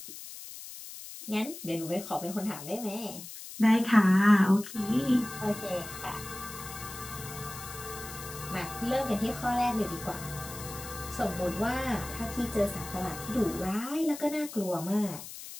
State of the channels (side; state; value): left; noise; hiss, 12 dB below the sound